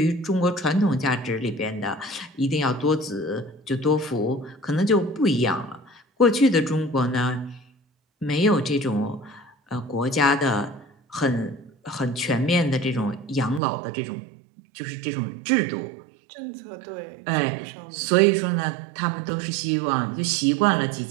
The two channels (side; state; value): left; drops out; at 13.6 s